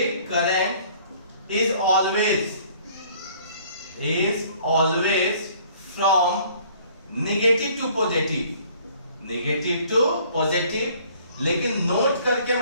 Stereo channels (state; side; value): inverted; both; correlation -0.56